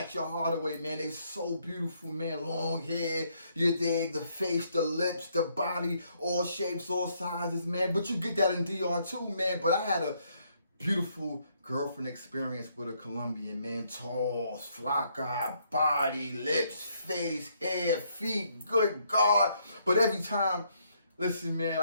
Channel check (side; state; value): both; inverted; correlation -0.72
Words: your heart away, man. They so beautiful, man. Long hair, you dig, the face, the lips, the body, all shapes, all sizes, man. But you get that in DR too, man. But I had a beautiful girlfriend experience with a Colombian, man. Tall, flaca, body, lips, face, hair, feet, good God. But every time, listen, man,